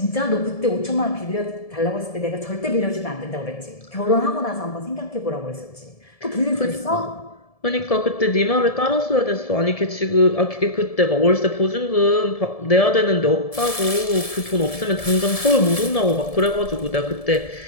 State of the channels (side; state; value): right; late; 1.7 ms